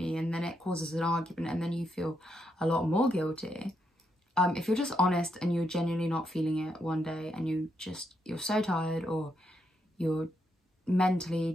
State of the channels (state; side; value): normal; both; correlation 0.80